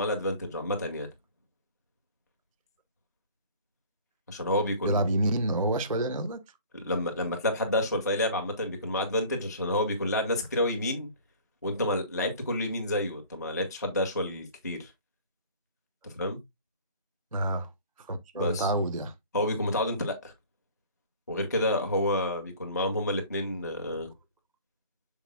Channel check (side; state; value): both; inverted; correlation -0.47